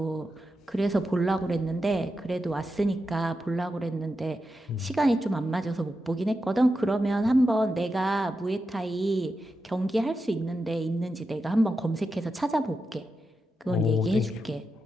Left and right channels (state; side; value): normal; both; correlation 0.88